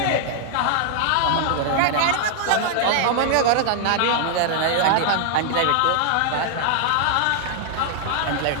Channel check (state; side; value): different; both; correlation 0.00